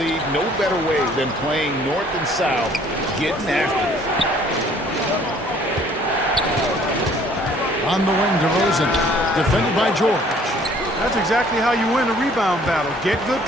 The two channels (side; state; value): both; normal; correlation 0.58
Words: no better way than playing north and south, getting after it. On the wing, DeRozan, defended by George. That's exactly how you win a rebound battle. Get good